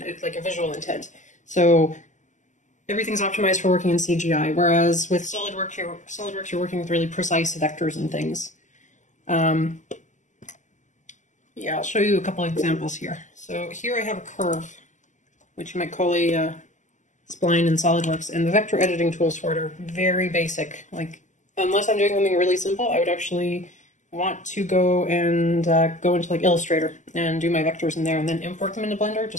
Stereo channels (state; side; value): late; right; 0.36 ms